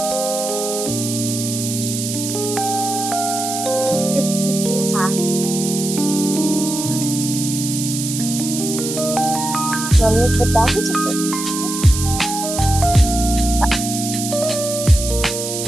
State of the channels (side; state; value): right; noise; hiss, 5 dB below the sound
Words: मम्मी बता के चलते